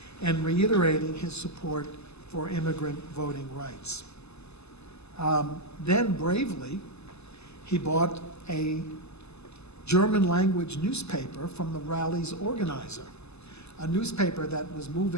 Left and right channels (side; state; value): right; late; 0.80 ms